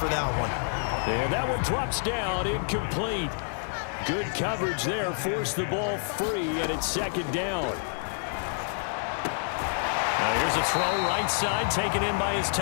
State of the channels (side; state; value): right; silent; 58 dB below the other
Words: that one. And that one drops down, incomplete. Good coverage there, forced the ball free, and it's second down. Now here's a throw right side, taken in by his